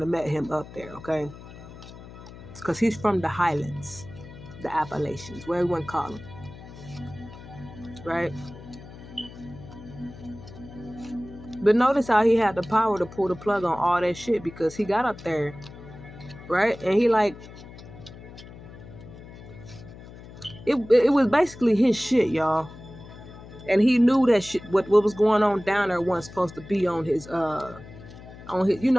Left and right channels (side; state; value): left; noise; hum, 16 dB below the sound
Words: have met him up there, okay? Because he's from the highlands, the Appalachians, where everyone call him. Right? But notice how he had the power to pull the plug on all that shit, because he got up there, right? And he it was basically his shit, y'all. And he knew that shit, what was going on down there wasn't supposed to be on his on